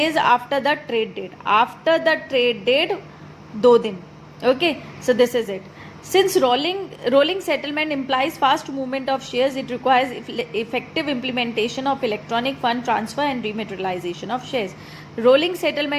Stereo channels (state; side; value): identical; both; correlation 1.00